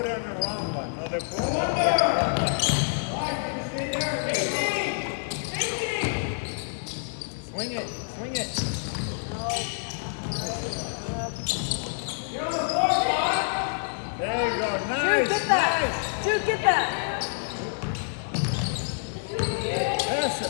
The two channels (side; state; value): right; silent; digital silence